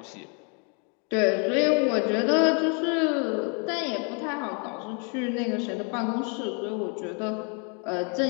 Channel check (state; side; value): quieter; right; 37.0 dB